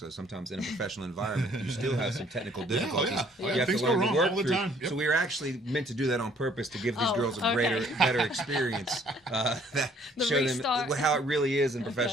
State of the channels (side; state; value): both; normal; correlation 0.60